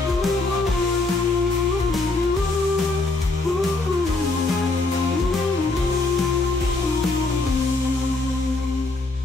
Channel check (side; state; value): right; quieter; 3.2 dB